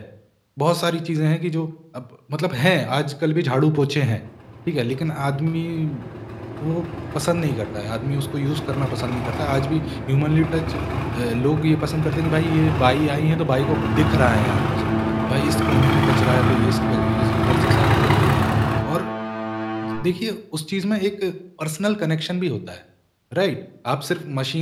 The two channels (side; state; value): both; identical; correlation 1.00